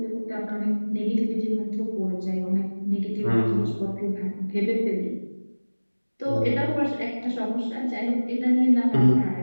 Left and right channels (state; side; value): inverted; both; correlation -1.00